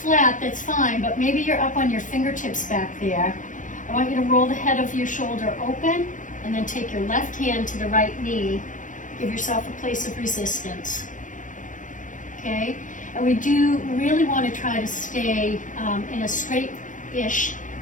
that's fine, but maybe you're up on your fingertips back there. I want you to roll the head of your shoulder open and then take your left hand to the right knee. Give yourself a place of resistance. Okay? And we do really want to try to stay in a straighter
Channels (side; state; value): right; late; 0.37 ms